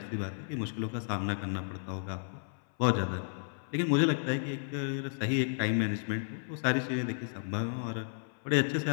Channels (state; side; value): silent; right; 56 dB below the other